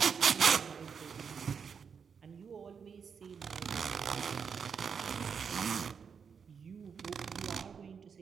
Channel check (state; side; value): quieter; left; 6.4 dB